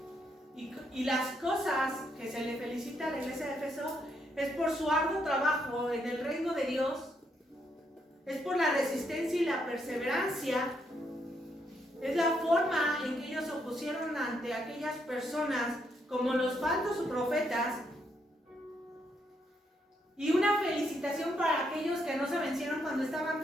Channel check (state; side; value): normal; both; correlation 0.76